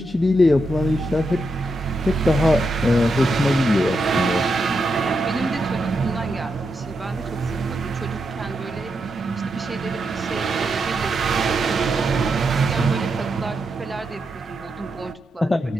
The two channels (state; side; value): normal; both; correlation 0.84